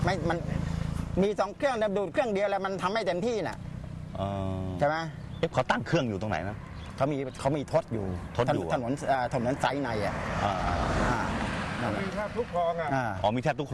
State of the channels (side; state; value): both; identical; correlation 1.00